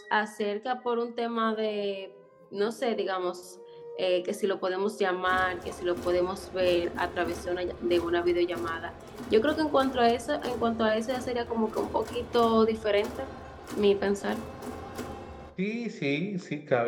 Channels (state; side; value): identical; both; correlation 1.00